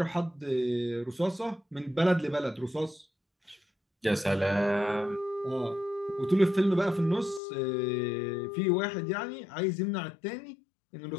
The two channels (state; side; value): drops out; right; at 7.4 s